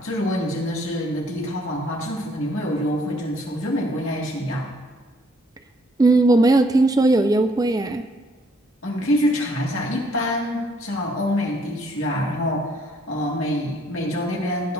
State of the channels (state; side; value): normal; both; correlation 0.66